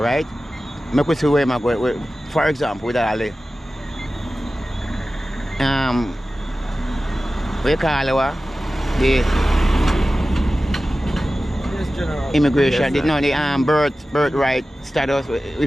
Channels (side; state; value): both; normal; correlation 0.95